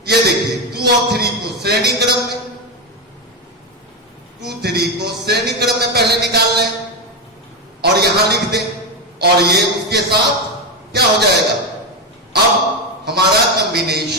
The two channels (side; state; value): both; normal; correlation 0.10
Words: ये देखिए 2 और 3 को श्रेणी क्रम में, 2, 3 को श्रेणी क्रम में पहले निकाल लें और यहां लिख दें, और ये उसके साथ क्या हो जाएगा, अब हमारा